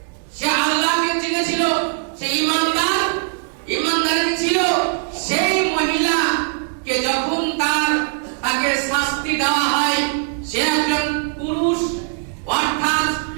সে আল্লাহকে চিনেছিল, সে ইমানদার ছিল। সেই মহিলাকে যখন তাকে শাস্তি দেওয়া হয়, সে একজন পুরুষ অর্থাৎ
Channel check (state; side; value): silent; left; 66 dB below the other